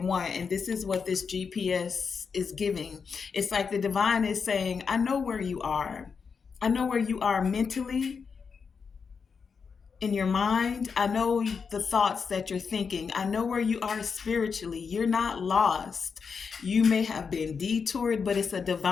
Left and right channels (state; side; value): quieter; right; 5.7 dB